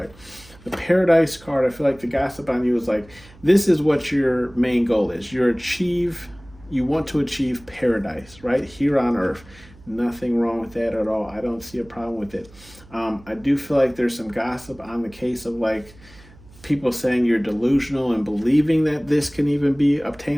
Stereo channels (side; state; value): right; noise; hum, 23 dB below the sound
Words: The Paradise card, I feel like the gossip on you is like, this is what your main goal is. You want to achieve paradise, right? Here on earth. Nothing wrong with that at all. I don't see a problem with it. I do feel like there's some gossip on the case of like people saying you're delusional and believing that this can even be